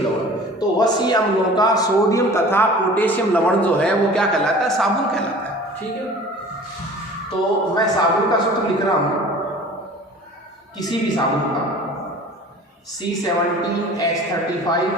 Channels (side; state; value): both; normal; correlation 0.43